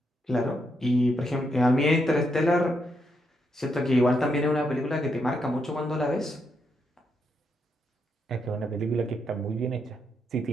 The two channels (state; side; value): normal; both; correlation 0.80